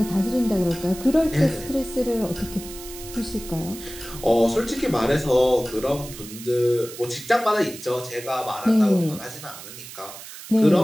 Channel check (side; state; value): right; noise; hiss, 14 dB below the sound